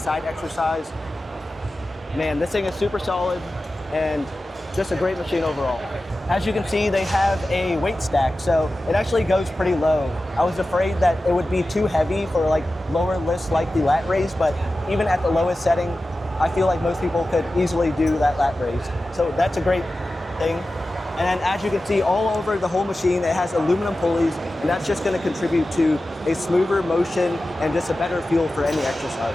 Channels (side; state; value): both; normal; correlation 0.94